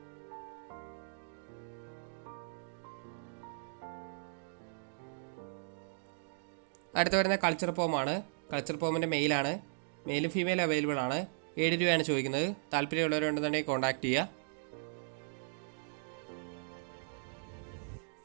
അടുത്ത് വരുന്ന കൾച്ചർ പോമാണ്. കൾച്ചർ പോമിൻ്റെ മെയിലാണ്. മെയിലും ഫീമെയിലും അവൈലബിൾ ആണ്. 7 രൂപയാണ് ചോദിക്കുന്നത്. താല്പര്യമുള്ളവരുണ്ടെന്നുണ്ടെങ്കിൽ കോൺടാക്ട് ചെയ്യുക.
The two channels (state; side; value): silent; left; digital silence